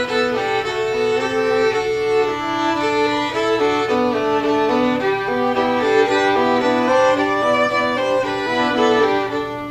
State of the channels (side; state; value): both; identical; correlation 1.00